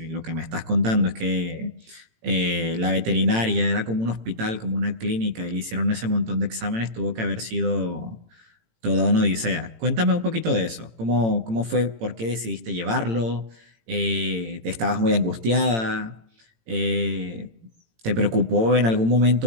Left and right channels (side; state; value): left; late; 18 ms